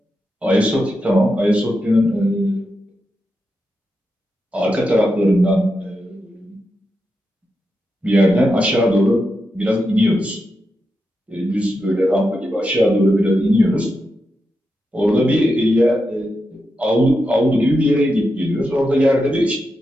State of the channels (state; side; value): normal; both; correlation 0.87